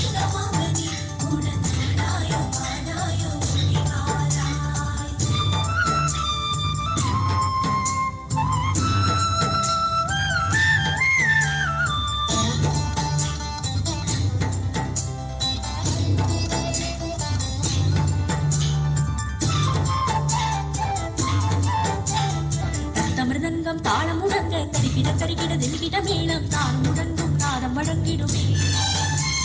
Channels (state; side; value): identical; both; correlation 1.00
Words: மகனி உடன் ஆடாயும் பாடாயும் ஓடி வாடாய் மிருதங்கம் தாளம் முழங்க கருகிட கருகிட தில்கிட மேளம் தாளம் முழங்கும் நாதம் வழங்கிடுமே